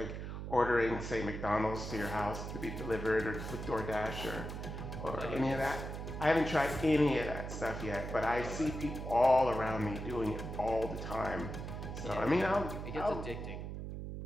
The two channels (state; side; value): noise; right; hum, 7 dB below the sound